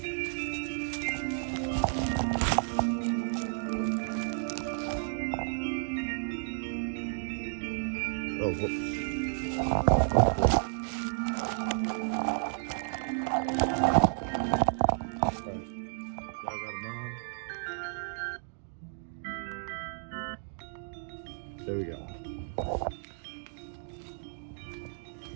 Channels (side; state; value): left; silent; digital silence